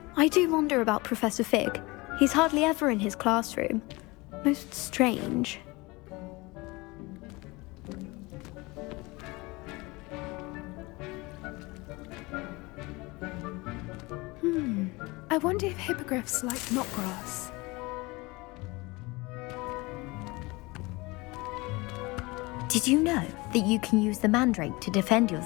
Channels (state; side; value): quieter; right; 23.8 dB